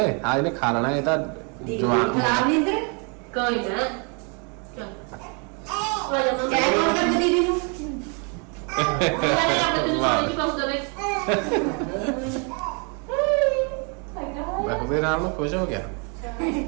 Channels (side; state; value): left; quieter; 35.8 dB